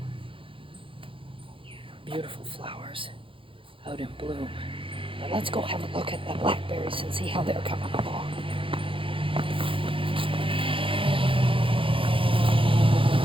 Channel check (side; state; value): left; late; 0.25 ms